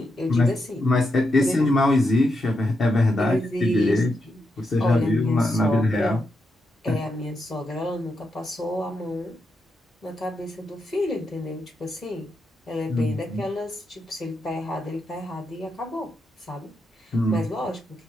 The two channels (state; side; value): normal; both; correlation 0.84